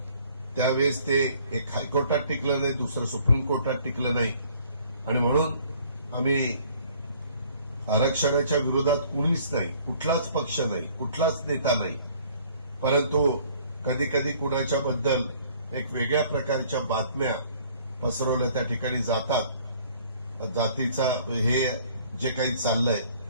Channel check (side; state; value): both; inverted; correlation -0.56